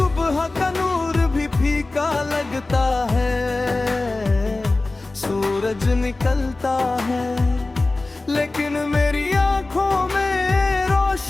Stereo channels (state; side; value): quieter; right; 3.2 dB